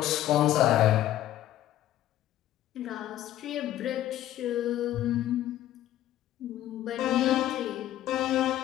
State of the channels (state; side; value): quieter; right; 13.1 dB